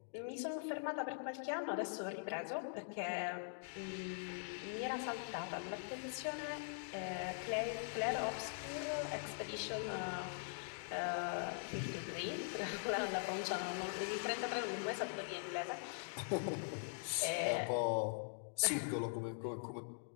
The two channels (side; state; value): right; silent; digital silence